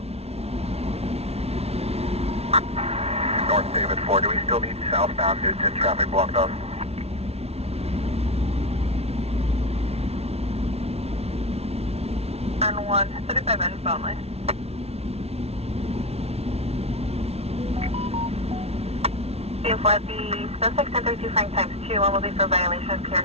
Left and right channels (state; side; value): late; left; 0.30 ms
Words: North David 4, do we still need southbound due to traffic blocked up? And 1, 35 minutes only. For the suspect 1032 Frank times 2, one will be for violation of